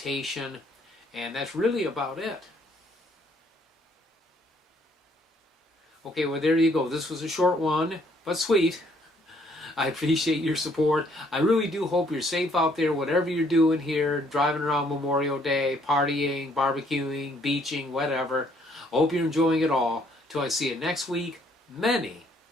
and that's really about it. Okay, well there you go. This was a short one, but sweet. I appreciate your support. I really do hope you're safe out there, whatever you're doing here, driving around Memorial Day, partying, barbecuing, beaching, whatever. I hope you're enjoying it all. Till I see you next week, many,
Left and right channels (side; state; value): both; normal; correlation 0.66